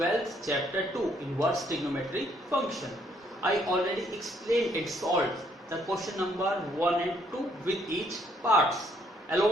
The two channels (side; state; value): both; normal; correlation 0.68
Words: chapter 2 inverse trigonometry function. I already explained and solved the question number 1 and 2 with each parts